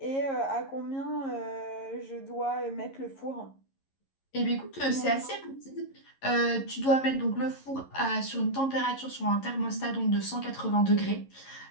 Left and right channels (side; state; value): right; late; 11 ms